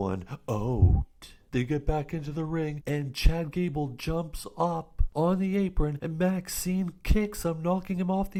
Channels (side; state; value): both; identical; correlation 1.00